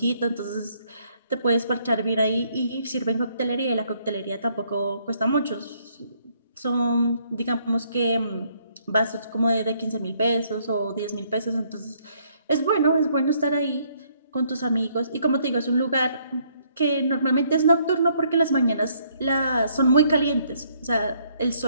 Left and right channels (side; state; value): both; inverted; correlation -0.68